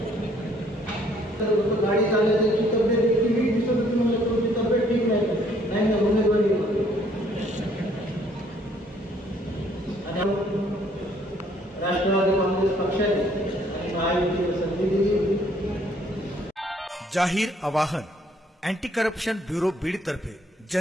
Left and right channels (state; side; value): normal; both; correlation 0.63